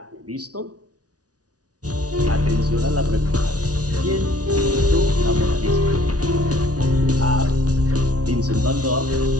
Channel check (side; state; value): left; late; 0.68 ms